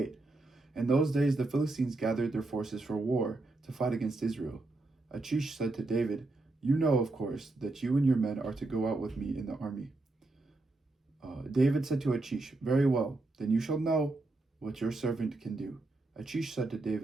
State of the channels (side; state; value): left; quieter; 3.0 dB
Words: In those days the Philistines gathered their forces for war to fight against Israel. Achish said to David, "You know, of course, that you and your men are to go out with me in the army." David said to Achish, "Very well, then you shall know what your servant can do." Achish said to